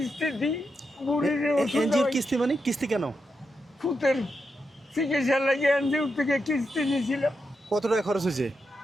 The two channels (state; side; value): normal; both; correlation 0.86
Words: দিই, বুড়ির ওষুধ এনজিওর কিস্তি মানে? কিস্তি কেন? ফুতের চিকিৎসা লাগে এনজিওর থেকে কিস্তি নিয়েছিলাম। কত টাকা খরচ হয়েছে?